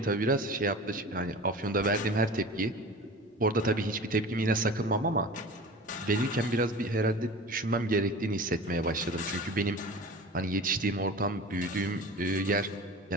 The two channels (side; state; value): both; normal; correlation 0.36